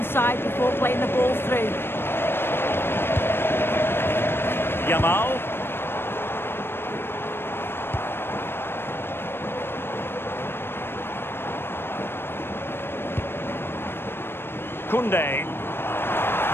side before playing the ball through. Yamal. Koundé.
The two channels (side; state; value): right; late; 0.11 ms